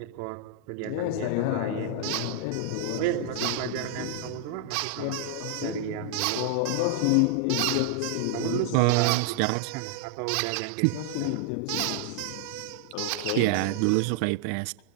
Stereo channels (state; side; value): different; both; correlation -0.01